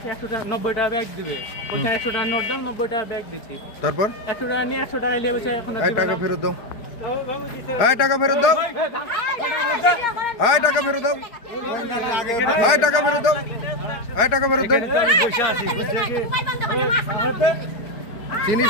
100 টাকা 90 টাকা ব্যাগ দিবে, ওকে 100 টাকা নোট দাও, 90 টাকা ব্যাগ দিচ্ছি। তারপর 100 টাকা নিয়ে 100 টাকা নিয়ে বসে এখন টাকা ফেরত দাও, টাকা ফেরত দাও, টাকা ফেরত দাও, টাকা ফেরত দাও, টাকা ফেরত দাও।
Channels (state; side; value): late; right; 4.7 ms